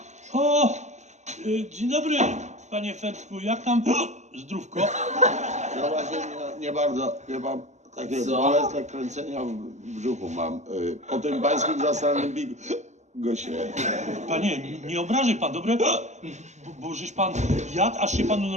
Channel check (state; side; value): late; left; 0.34 ms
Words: O! Dzień dobry, panie Fertku, jak tam zdrówko? Ja właśnie nie bardzo, chyba takie bolesne kręcenia w brzuchu mam. Po tym pańskim zastanym bigosie. Panie, nie obrażaj pan, dobre? Bo żeś pan jadł, aż się panu